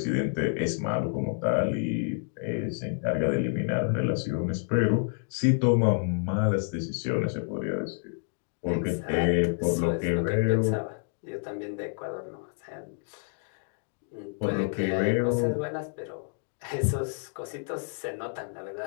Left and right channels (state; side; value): silent; right; 59 dB below the other